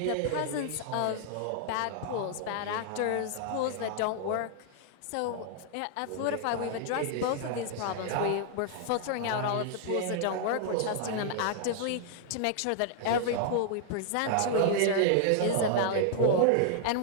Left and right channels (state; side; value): different; both; correlation -0.01